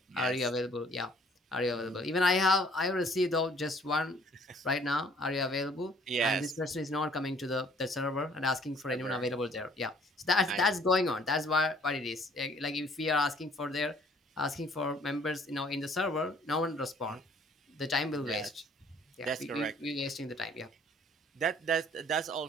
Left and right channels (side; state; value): both; normal; correlation 0.58